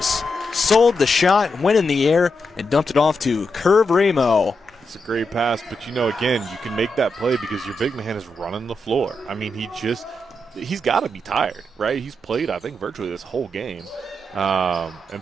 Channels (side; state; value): both; normal; correlation 0.85